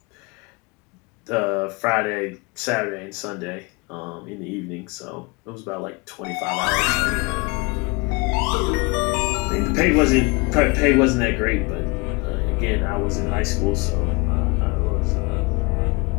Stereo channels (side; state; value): right; quieter; 27.5 dB